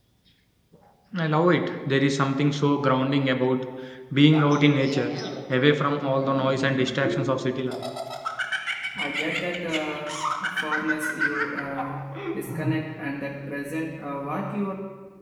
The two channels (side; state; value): both; identical; correlation 1.00